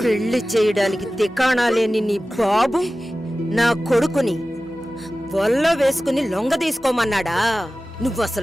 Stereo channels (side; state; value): both; normal; correlation 0.96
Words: పెళ్లి చేయడానికి తికాణా లేని నీ బాబు నా కొడుకుని వల్ల వేసుకుని లొంగ తీసుకోమన్నాడా? నువ్వు